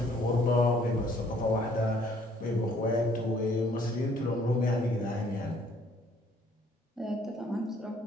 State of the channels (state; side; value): normal; both; correlation 0.62